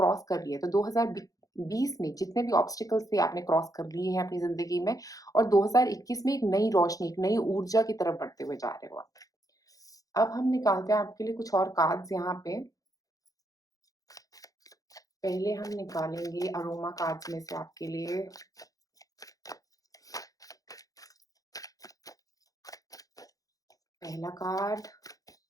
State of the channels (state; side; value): late; right; 0.17 ms